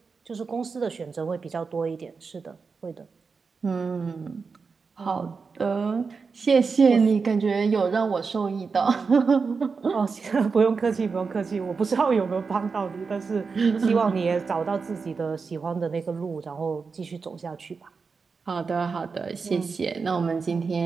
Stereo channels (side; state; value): left; quieter; 5.0 dB